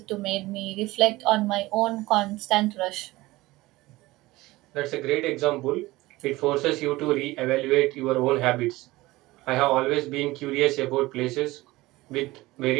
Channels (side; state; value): left; quieter; 19.4 dB